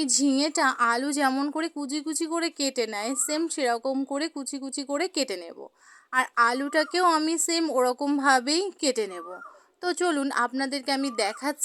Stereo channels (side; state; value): both; identical; correlation 1.00